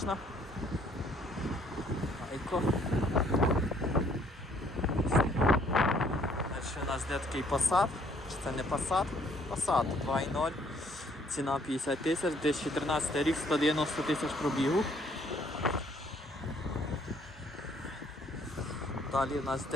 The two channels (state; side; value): normal; both; correlation 0.63